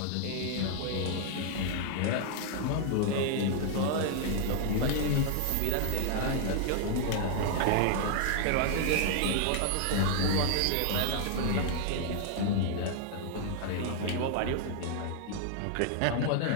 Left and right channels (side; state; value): both; different; correlation -0.01